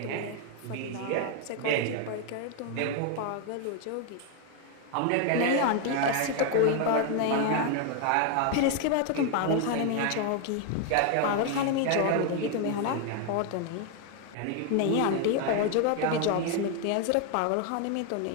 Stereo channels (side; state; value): both; different; correlation 0.01